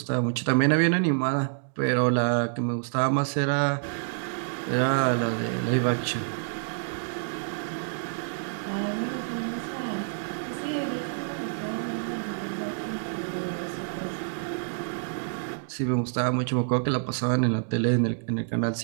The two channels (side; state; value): left; silent; digital silence